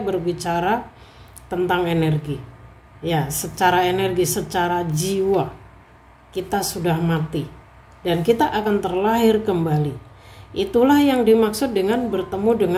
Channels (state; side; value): identical; both; correlation 1.00